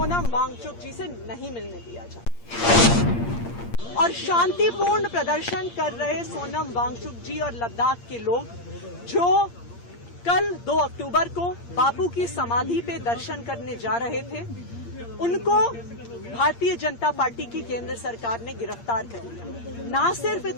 वांगचुक जी से नहीं मिलने दिया जाए और शांतिपूर्ण प्रदर्शन कर रहे सोनम वांगचुक जी और लद्दाख के लोग जो कल 2 अक्टूबर को बापू की समाधि पे दर्शन करने जा रहे थे, उनको भारतीय जनता पार्टी की केंद्र सरकार ने गिरफ्तार कर लिया। ना सिर्फ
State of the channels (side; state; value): right; late; 8.6 ms